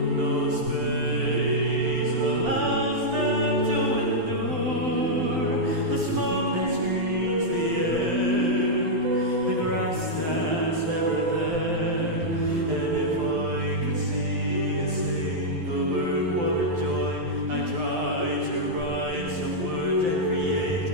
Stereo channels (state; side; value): late; left; 12 ms